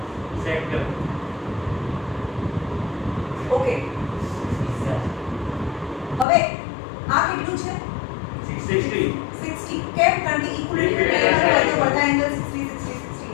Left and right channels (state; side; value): drops out; right; at 6.2 s